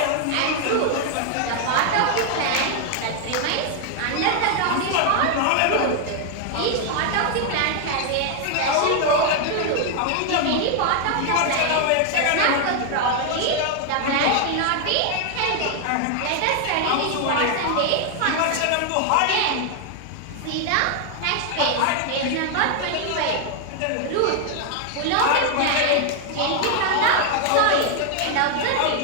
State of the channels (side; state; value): both; different; correlation 0.00